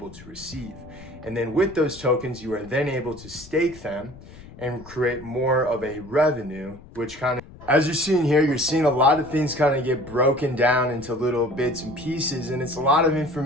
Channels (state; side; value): noise; left; rumble, 19 dB below the sound